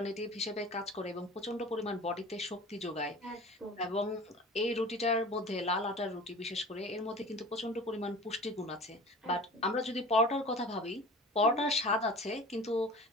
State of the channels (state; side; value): normal; both; correlation 0.40